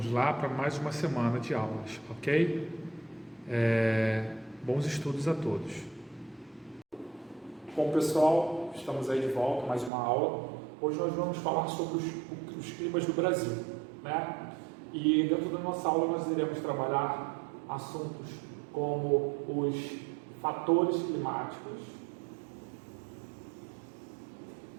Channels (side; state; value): left; drops out; at 9.9 s